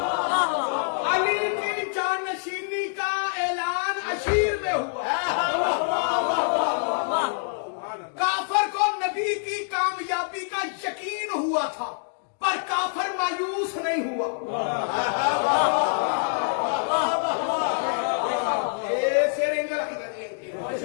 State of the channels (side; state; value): right; silent; digital silence